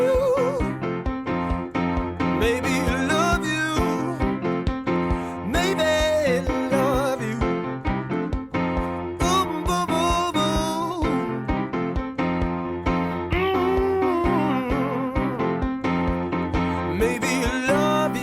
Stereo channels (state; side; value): identical; both; correlation 1.00